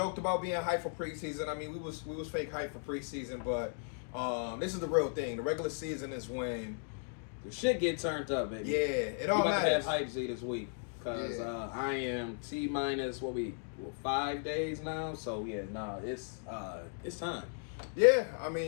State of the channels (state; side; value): silent; right; 54 dB below the other